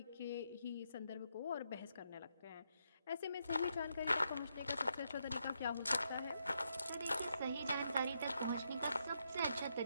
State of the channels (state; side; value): inverted; both; correlation -0.80